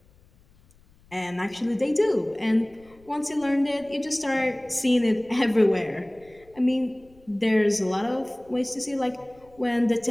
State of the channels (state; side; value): noise; left; rumble, 29 dB below the sound